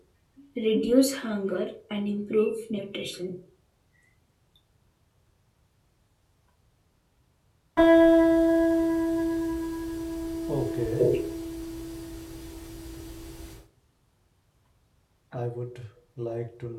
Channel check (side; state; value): both; identical; correlation 1.00